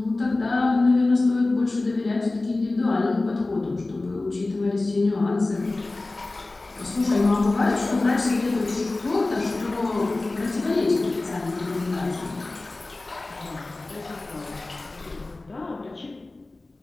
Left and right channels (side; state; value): right; quieter; 3.1 dB